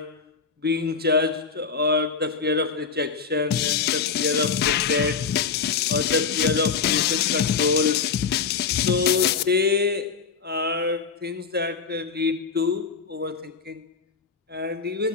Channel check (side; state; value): right; quieter; 5.5 dB